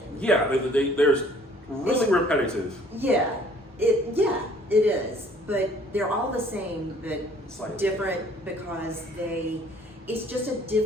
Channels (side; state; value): both; normal; correlation 0.57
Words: Yeah, there's really repetitive. Yeah, it is. But they're all the same, but Slightly different because it's just a